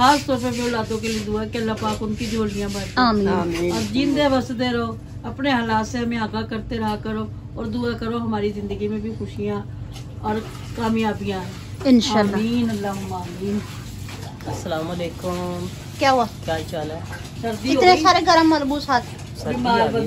तौर पे औलादों के लिए दुआ है कि अल्लाह पाक उनकी झोलियां भरे। आमीन। और जिंदे बसते रहो, अपने हालात से हमें आगाह करते रहा करो और दुआ करो हमारी जिंदगी में भी खुशियाँ और कामयाबियाँ इंशाल्लाह। आमीन अल्लाहुम्मा आमीन। अस्सलाम वालेकुम, क्या हुआ? क्या चाल है? सर्दी इतने सारे गरम मलबूस हाथ। बीमार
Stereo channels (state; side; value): identical; both; correlation 1.00